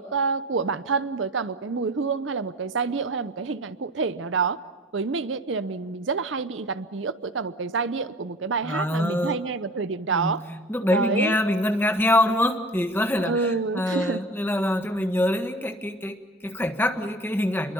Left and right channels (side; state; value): both; normal; correlation 0.40